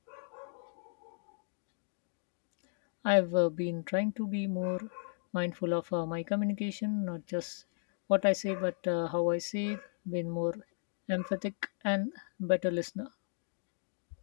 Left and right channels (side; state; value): right; silent; digital silence